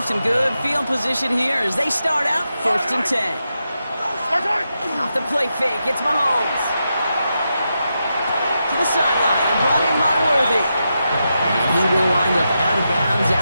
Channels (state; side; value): inverted; both; correlation -0.87